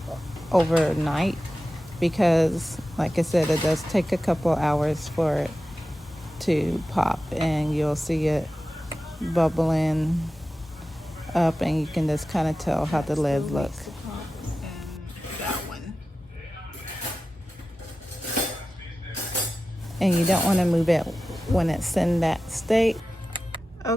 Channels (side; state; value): both; normal; correlation 0.94